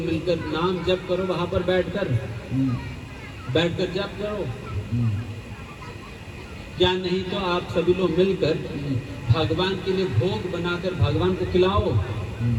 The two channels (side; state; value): both; identical; correlation 1.00